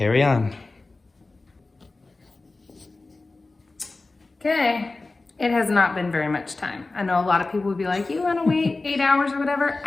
on. Okay, it has not been very much time. I know a lot of people would be like, you wanna wait 8 hours or whatever?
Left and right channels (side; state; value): right; quieter; 3.4 dB